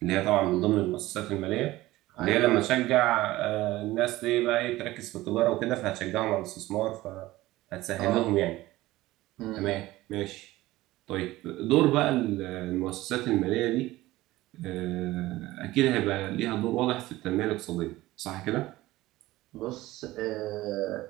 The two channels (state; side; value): quieter; left; 17.5 dB